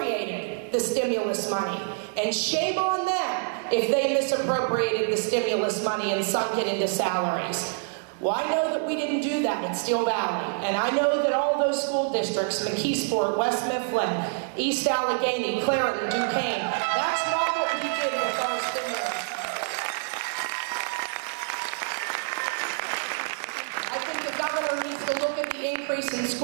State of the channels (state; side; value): silent; left; 60 dB below the other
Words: the stimulus money. And shame on them if they misappropriated the stimulus money and sunk it into salaries. Well, I know that we didn't do that at Steel Valley, and I know that all those school districts, McKeesport, West Mifflin, East Allegheny, Clarendon, Duquesne, that's not what we did with our stimulus. I think the governor needs to look at the increase in